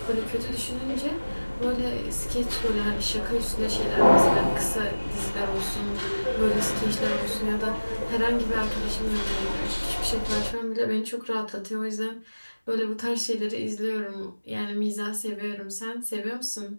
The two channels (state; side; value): inverted; both; correlation -1.00